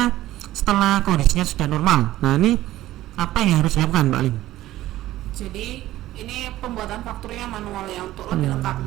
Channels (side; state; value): left; quieter; 15.1 dB